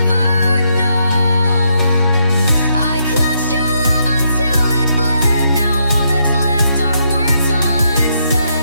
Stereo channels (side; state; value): both; inverted; correlation -0.77